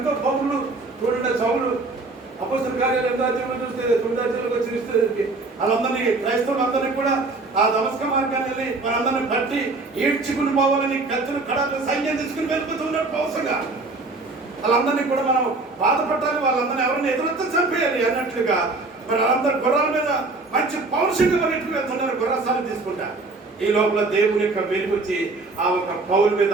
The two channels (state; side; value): quieter; left; 3.4 dB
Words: పౌరులు చూడండి. సౌలు అపోస్తల కార్యాలు 8వ అధ్యాయంలో చూస్తే 9వ అధ్యాయంలోకి వచ్చి వాళ్ళందరినీ క్రైస్తవులందరినీ కూడా ఆ దమస్క మార్గాన్ని వెళ్ళి వాళ్ళందరినీ బట్టి ఈడ్చుకుని పోవాలని కత్తులు కడాలు సైన్యం తీసుకుని వెళ్ళిపోతున్నారు పౌరుషంగా. వాళ్ళందరినీ కూడా మనం బాధపడాలి, వాళ్ళందరినీ ఎవరిని ఎదురొత్త చంపేయాలి అన్నట్లుగా మరి వాళ్ళందరూ గుర్రాల మీద మంచి పౌరుషంగా పరిగెట్టుకు వెళ్తున్నారు, గుర్రసాలు తీసుకుంటా. ఈ లోపల దేవుని యొక్క వెలుగు వచ్చి ఆ ఒక పౌరు మీద,